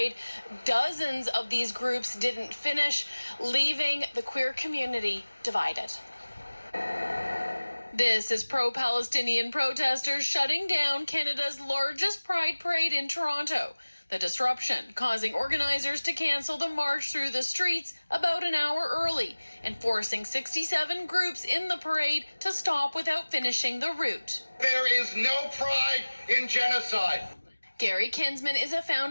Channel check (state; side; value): inverted; both; correlation -1.00